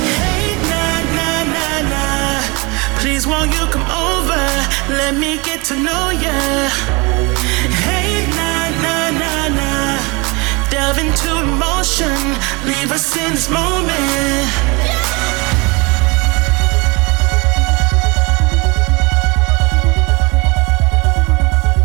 Hey, please won't you come over? Let me get to know ya. Hey, nah, nah, nah, nah. Delve into emotion. Leave us in this moment.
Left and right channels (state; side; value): quieter; left; 27.2 dB